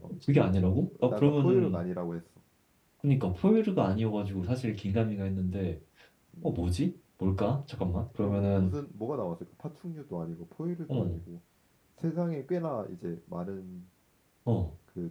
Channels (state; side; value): identical; both; correlation 1.00